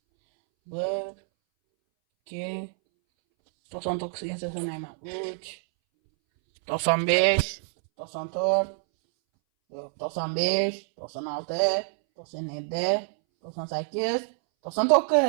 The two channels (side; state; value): left; silent; 60 dB below the other